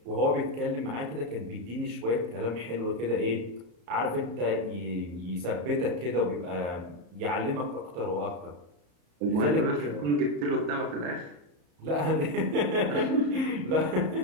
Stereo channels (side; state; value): left; late; 34 ms